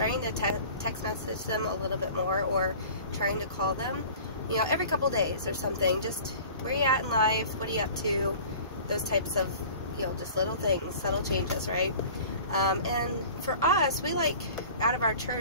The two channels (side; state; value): both; inverted; correlation -0.43